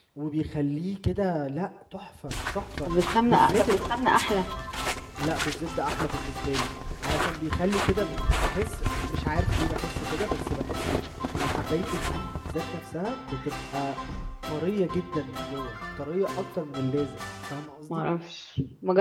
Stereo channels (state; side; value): identical; both; correlation 1.00